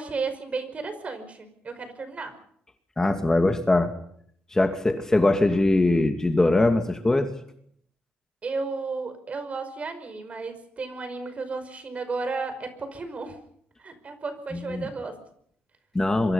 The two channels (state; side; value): normal; both; correlation 0.93